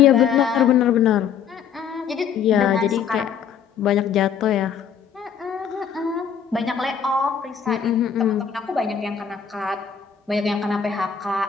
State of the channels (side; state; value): right; quieter; 7.6 dB